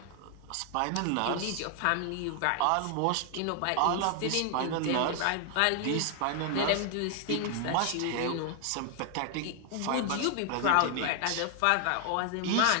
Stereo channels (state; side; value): different; both; correlation 0.00